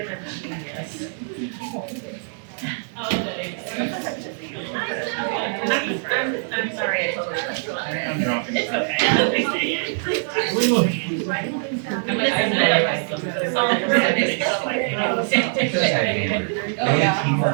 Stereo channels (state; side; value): silent; left; digital silence